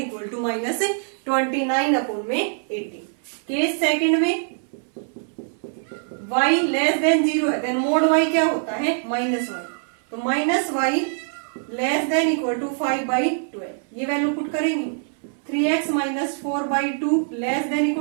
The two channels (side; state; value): left; silent; 63 dB below the other